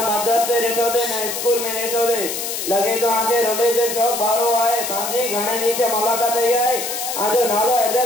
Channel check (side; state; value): left; noise; hiss, 4 dB below the sound